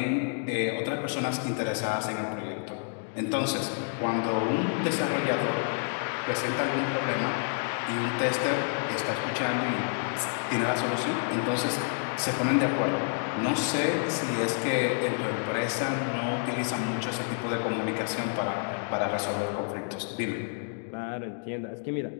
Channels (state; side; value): silent; right; 59 dB below the other